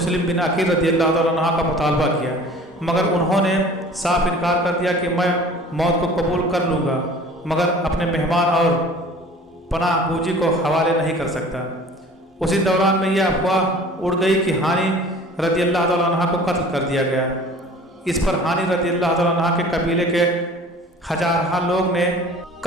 بن عقیل رضی اللہ تعالیٰ عنہ کا مطالبہ کیا، مگر انہوں نے صاف انکار کر دیا کہ میں موت کو قبول کر لوں گا، مگر اپنے مہمان اور پناہ گوجی کو حوالے نہیں کر سکتا۔ اسی دوران میں یہ افواہ اڑ گئی کہ ہانی رضی اللہ تعالیٰ عنہ کو قتل کر دیا گیا۔ اس پر ہانی رضی اللہ تعالیٰ عنہ کے قبیلے کے ہزارہ لوگ نے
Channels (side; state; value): both; normal; correlation 0.46